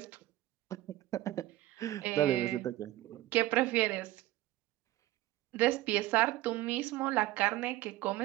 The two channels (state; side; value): quieter; left; 16.2 dB